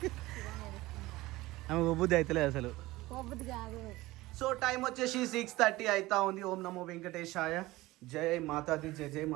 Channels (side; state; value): left; quieter; 18.9 dB